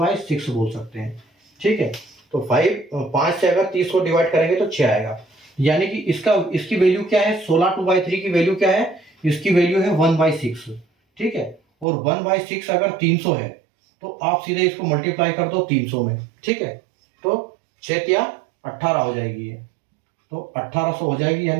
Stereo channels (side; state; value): left; drops out; at 11.9 s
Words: बोल सकते हैं। ठीक है, तो 5 से अगर 30 को डिवाइड करेंगे तो 6 आएगा, यानी कि इसकी वैल्यू क्या है, 16 2/3 की वैल्यू क्या है, इसकी वैल्यू है 1/6। ठीक है, और 1/6 अगर 300 है तो आप सीधे इसको मल्टीप्लाई कर दो 300 में। ठीक है, तो 6 या 18 हो जाएगी ये, तो 1800 हो जाएगी,